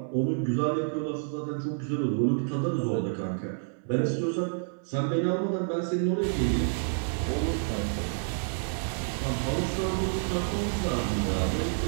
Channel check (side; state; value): left; silent; 59 dB below the other